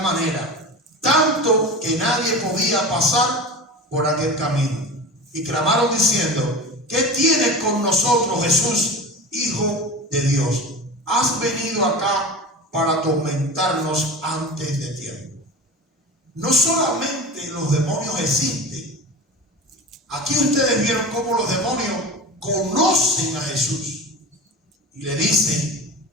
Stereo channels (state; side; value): normal; both; correlation 0.30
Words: manera, tanto que nadie podía pasar por aquel camino. Y clamaron diciendo: ¿qué tienes con nosotros, Jesús, Hijo de Dios? ¿Has venido acá para atormentarnos antes de tiempo? No solamente los demonios existen. Aquí ustedes vieron cómo los demonios conocen a Jesús y le dicen: